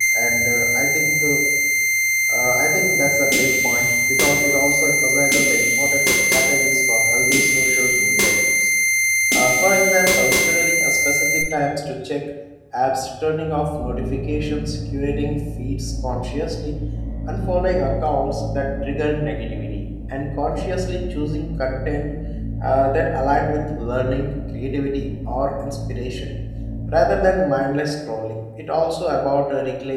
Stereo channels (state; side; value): identical; both; correlation 1.00